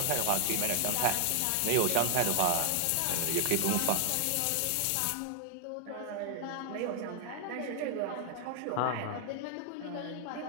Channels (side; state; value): both; different; correlation 0.00